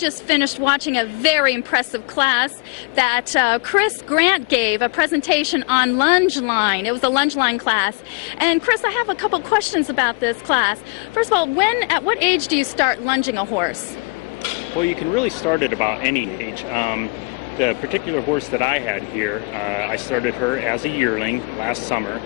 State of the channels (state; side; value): quieter; right; 29.2 dB